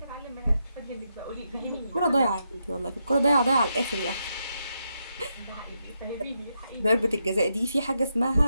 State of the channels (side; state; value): both; inverted; correlation -0.82